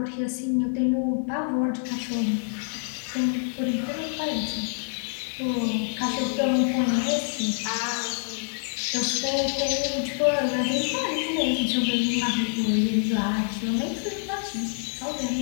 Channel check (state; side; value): silent; right; 61 dB below the other